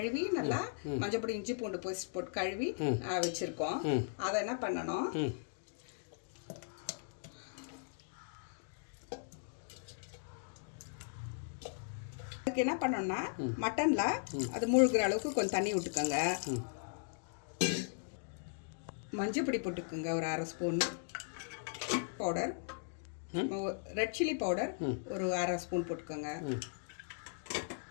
நல்லா மஞ்சள் பொடி இஞ்சி பூண்டு போட்டு கழுவி வச்சிருக்கோம். அதை என்ன பண்ணணும், அதுக்கு என்ன பண்ணணும்னா மட்டன்ல அது மூழ்கிற அளவுக்கு கொஞ்சம் தண்ணி விட்டுக்கோங்க. மஞ்சள் பொடி போட்டுக்கோங்க ஒரு 1/2 spoon powder, red chilli powder ஒரு 1/2 ஸ்பூன் போட்டுக்கோங்க.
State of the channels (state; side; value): silent; right; digital silence